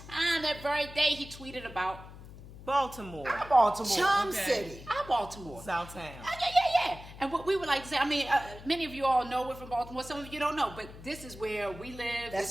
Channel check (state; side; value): noise; left; hum, 16 dB below the sound